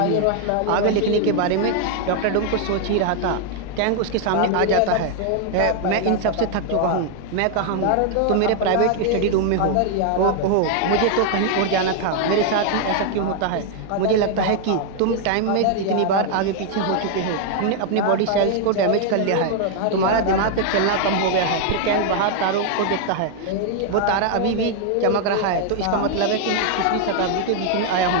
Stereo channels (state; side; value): different; both; correlation 0.00